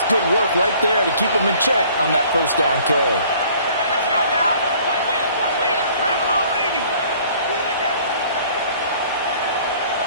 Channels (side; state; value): both; inverted; correlation -0.55